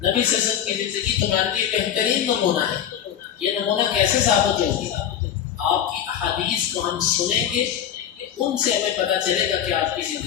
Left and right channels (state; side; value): quieter; right; 9.7 dB